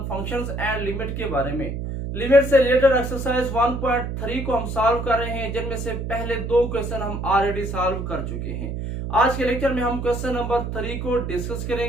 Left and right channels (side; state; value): right; noise; hum, 4 dB below the sound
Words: functions and limit के बारे में। लिमिट से रिलेटेड एक्सरसाइज 1.3 को हम सॉल्व कर रहे हैं, जिनमें से पहले दो क्वेश्चन हम ऑलरेडी सॉल्व कर चुके हैं। आज के लेक्चर में हम क्वेश्चन नंबर 3 को डिस्कस